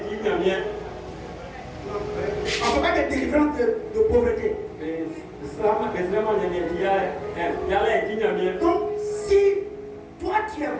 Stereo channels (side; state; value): both; identical; correlation 1.00